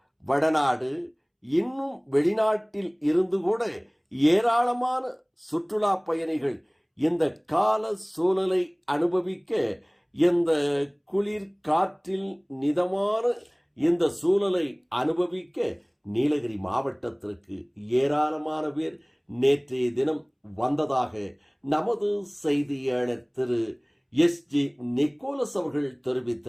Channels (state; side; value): identical; both; correlation 1.00